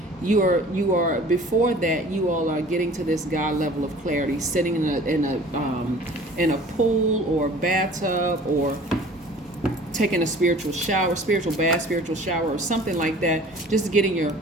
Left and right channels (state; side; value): normal; both; correlation 0.47